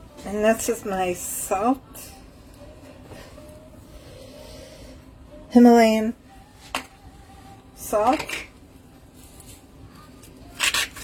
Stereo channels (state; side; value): identical; both; correlation 1.00